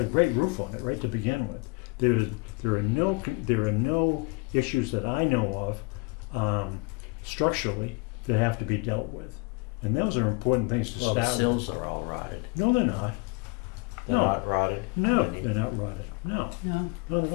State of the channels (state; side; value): quieter; right; 28.1 dB